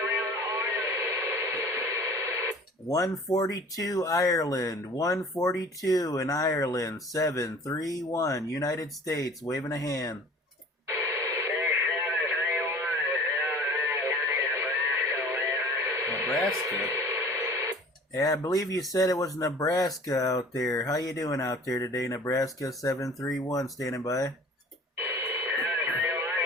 142 Ireland, 142 in Ireland, 731 United States, waving a hand. Nebraska? Yeah, I believe you said it was Nebraska out there. How you doing out there today, Nebraska? 731, standing by.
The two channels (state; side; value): normal; both; correlation 0.46